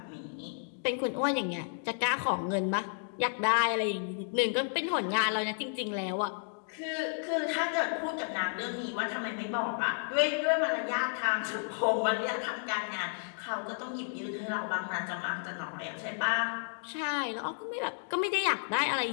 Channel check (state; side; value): silent; right; digital silence